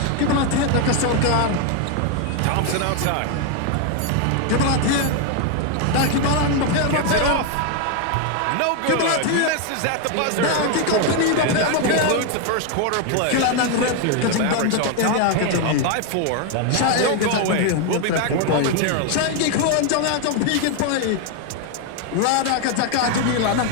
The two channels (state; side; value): different; both; correlation 0.01